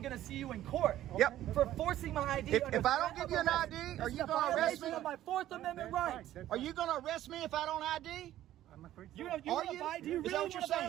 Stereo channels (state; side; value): quieter; left; 13.2 dB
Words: going to see you in court. Yep. For forcing my ID. If I don't give you an ID, are you going to arrest me? Of my Fourth Amendment rights. Are you going to arrest me if I don't ID? I'm afraid You so. want ID? You Is really that what you're